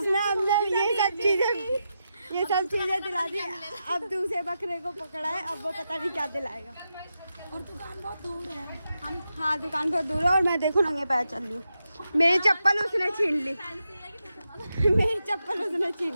हमने ये सब चीजें दिला दी। अब दूसरे बकरे को पकड़ा है, अब वो पता नहीं क्या दिलाएगा। और दुकान बहुत दूर है। हाँ दुकान बहुत दूर है और मैं देखो नंगे पैर चल रही हूँ। मेरी चप्पल उसने छीन ली, मेरी चप्पल उसने छीन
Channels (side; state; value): both; inverted; correlation -0.87